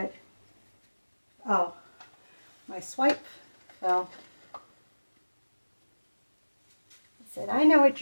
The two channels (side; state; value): both; inverted; correlation -1.00